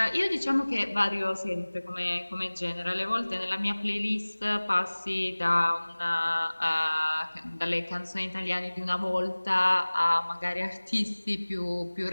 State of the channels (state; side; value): inverted; both; correlation -1.00